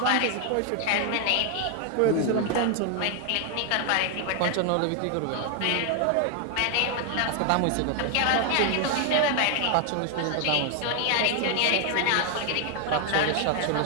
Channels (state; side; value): different; both; correlation 0.00